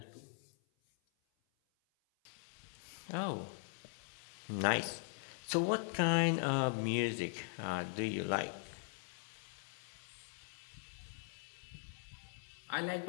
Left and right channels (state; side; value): silent; right; 50 dB below the other